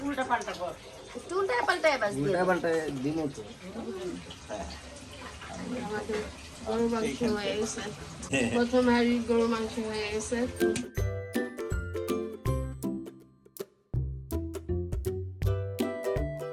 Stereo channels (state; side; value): identical; both; correlation 1.00